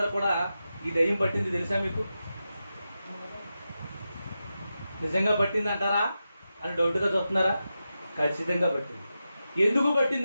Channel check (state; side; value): inverted; both; correlation -0.90